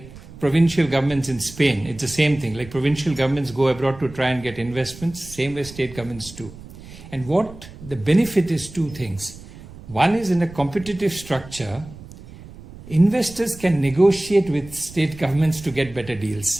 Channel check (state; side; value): noise; right; rumble, 17 dB below the sound